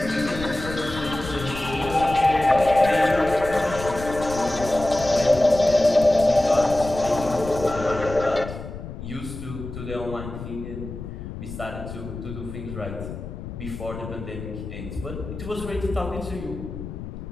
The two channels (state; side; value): noise; left; rumble, 10 dB below the sound